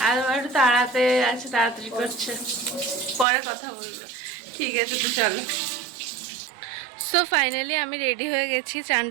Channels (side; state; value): left; drops out; at 3.2 s